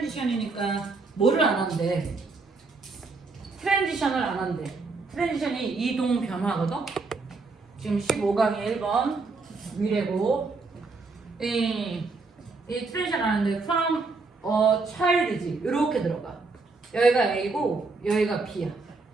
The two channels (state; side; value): quieter; left; 4.0 dB